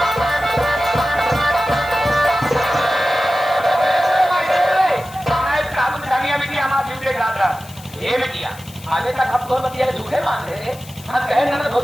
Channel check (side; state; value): left; noise; hiss, 20 dB below the sound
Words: आगे तक हम दोनों बतिया झूठे मान रहे हम कहे ननद हो